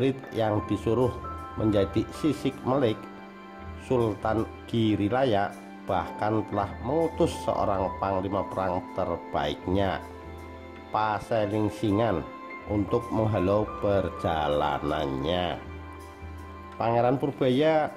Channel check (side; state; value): both; identical; correlation 1.00